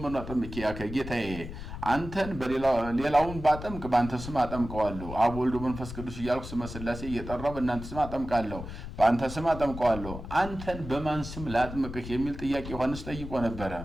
አጠምቂ ያከ ጌታዬ አንተን በሌላውን ባጠምቅ ባንተ ስም አጠምቀዋለሁ አብ ወልድ መንፈስ ቅዱስ እያልኩ ስመ ሥላሴ እየጠራው በእናንተ ስም አጠምቃለሁ ባንተ ስም አጠምቀዋለሁ አንተን በማን ስም ላጥምቅህ የሚል ጥያቄ ዮሐንስ ጠይቆ ነበር።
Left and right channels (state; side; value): noise; left; rumble, 10 dB below the sound